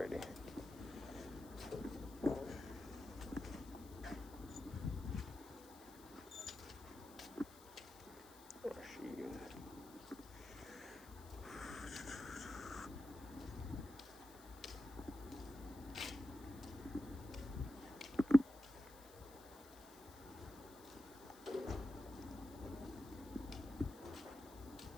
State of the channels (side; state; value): left; noise; hiss, 19 dB below the sound